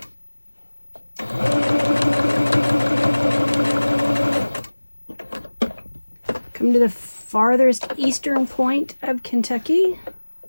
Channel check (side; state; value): both; inverted; correlation -1.00